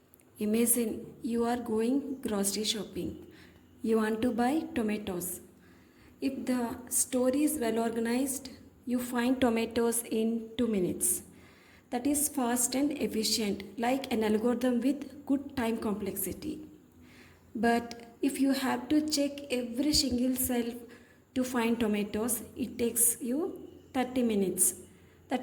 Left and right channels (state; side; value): identical; both; correlation 1.00